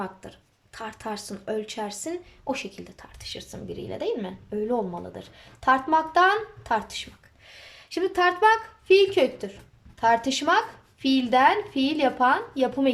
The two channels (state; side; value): identical; both; correlation 1.00